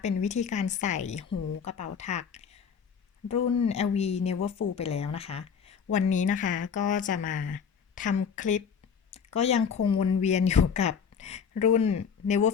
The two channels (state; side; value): quieter; right; 6.8 dB